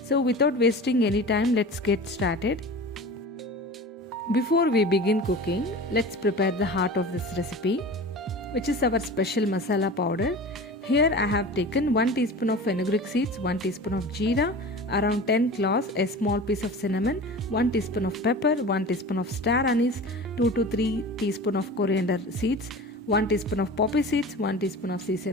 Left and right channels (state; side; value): normal; both; correlation 0.35